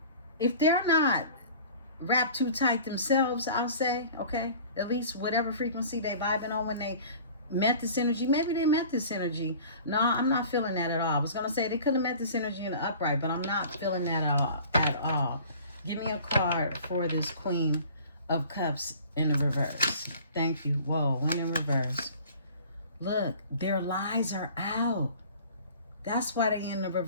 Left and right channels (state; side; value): inverted; both; correlation -0.46